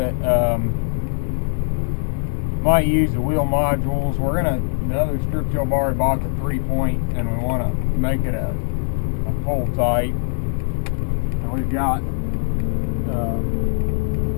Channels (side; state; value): right; silent; digital silence